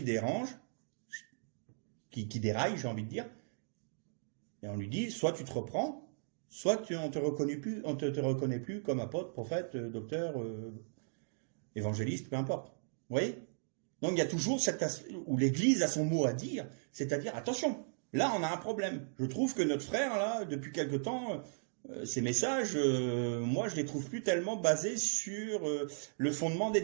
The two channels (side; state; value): left; silent; digital silence